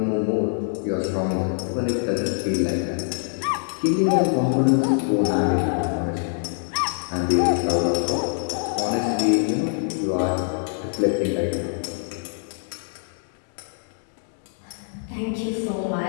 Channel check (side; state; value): right; silent; 62 dB below the other